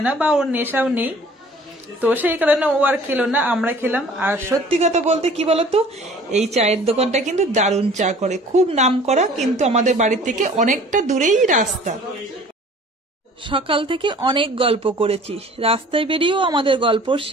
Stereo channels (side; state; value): both; normal; correlation 0.49